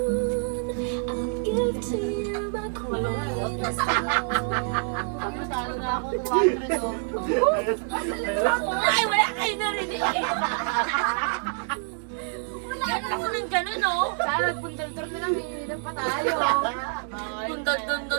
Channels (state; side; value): silent; left; 56 dB below the other